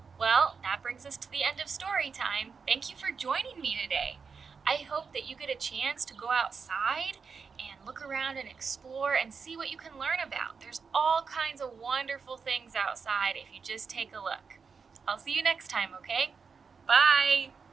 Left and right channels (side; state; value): left; quieter; 5.5 dB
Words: Well, that brings us to the end of story time. Thank you for joining me today. I hope that you get a chance to go outside and look around and explore and see what you can learn about. There's all kinds of wonderful things outside if you just take a look. I'll see you next time, okay? Bye!